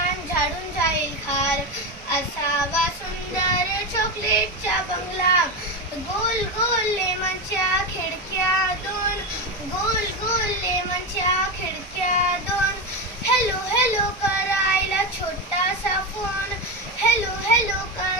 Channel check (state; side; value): normal; both; correlation 0.15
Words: झाडून जाईल खार. असावा सुंदर चॉकलेटचा बंगला, गोल गोल लेमनच्या खिडक्या दोन, गोल गोल लेमनच्या खिडक्या दोन. हॅलो हॅलो करायला छोटासा फोन, हॅलो हॅलो